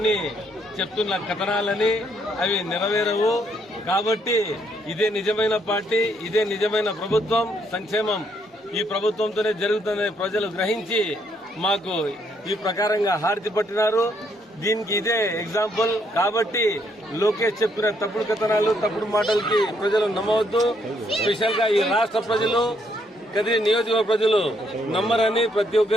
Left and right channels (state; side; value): normal; both; correlation 0.72